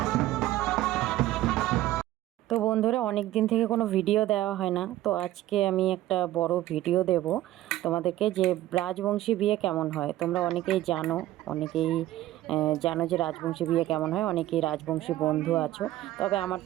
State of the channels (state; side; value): quieter; left; 14.9 dB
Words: তো বন্ধুরা, অনেক দিন থেকে কোনো ভিডিও দেওয়া হয় না, তো আজকে আমি একটা বড় ভিডিও দেব তোমাদেরকে, যে রাজবংশী বিয়ে কেমন হয়। তোমরা অনেকেই জানো যে রাজবংশী বিয়ে কেমন হয়, অনেকেই রাজবংশী বন্ধু আছো। তবে আমার